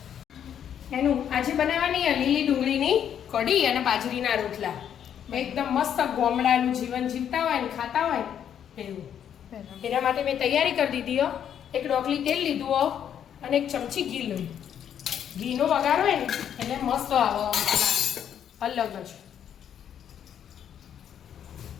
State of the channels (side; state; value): right; quieter; 9.2 dB